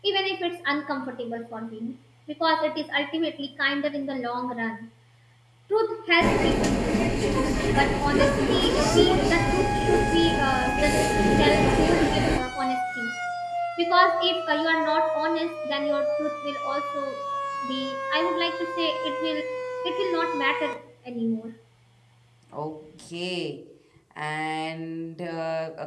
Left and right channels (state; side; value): identical; both; correlation 1.00